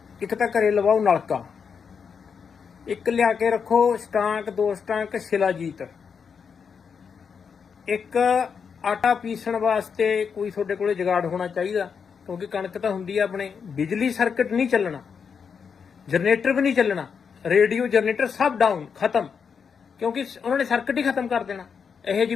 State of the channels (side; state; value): right; quieter; 6.4 dB